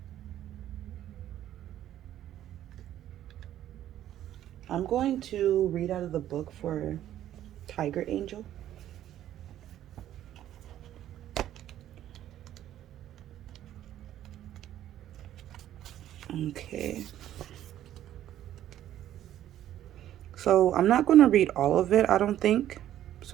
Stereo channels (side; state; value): left; quieter; 12.1 dB